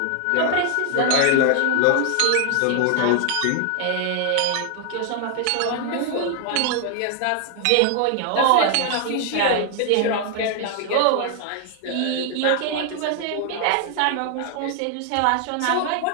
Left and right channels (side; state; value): both; different; correlation 0.00